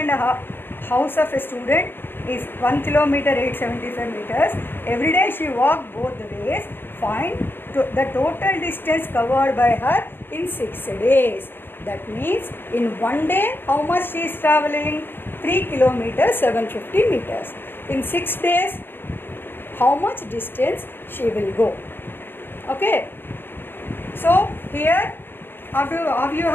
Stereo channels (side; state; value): right; late; 0.10 ms